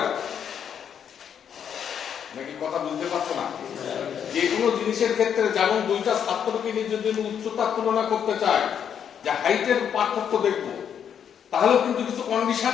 না। নাকি কথা বুঝতে পারছো না? যে কোনো জিনিসের ক্ষেত্রে যেমন দুইটা ছাত্রকে নিয়ে যদি উচ্চতার তুলনা করতে চায়, যে হাইটের পার্থক্য দেখবো, তাহলেও কিন্তু কিছু কন্ডিশন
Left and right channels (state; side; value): quieter; right; 8.3 dB